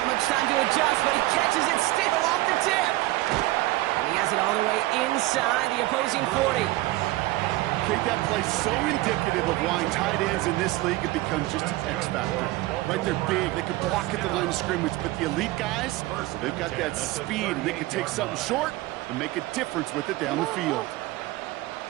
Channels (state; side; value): quieter; left; 18.6 dB